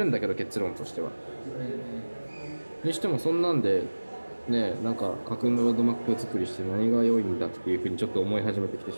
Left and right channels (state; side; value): inverted; both; correlation -1.00